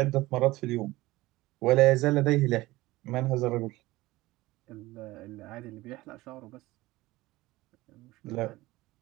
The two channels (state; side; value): quieter; left; 18.9 dB